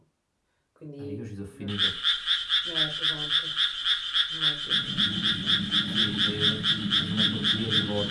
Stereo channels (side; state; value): both; identical; correlation 1.00